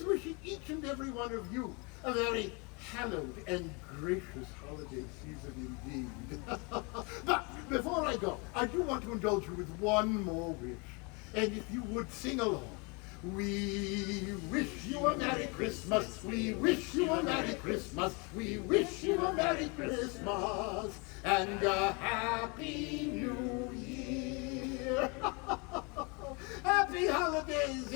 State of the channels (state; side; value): quieter; right; 31.1 dB